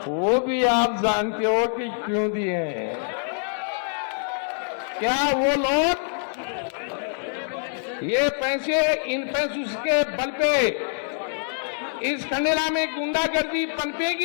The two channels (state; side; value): silent; right; digital silence